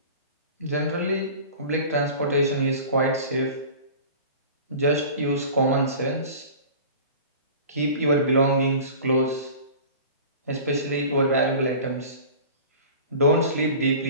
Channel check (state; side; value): inverted; both; correlation -0.40